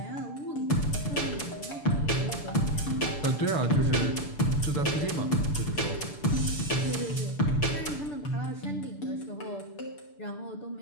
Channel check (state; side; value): late; right; 6.8 ms